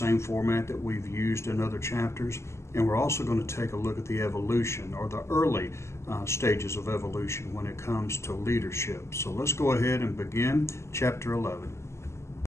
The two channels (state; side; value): late; right; 0.13 ms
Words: format that we've used in other chapters, and we're also going to take a look at the evolution or the early stages of evolution when it comes to leadership. So let's go ahead and begin chapter 11.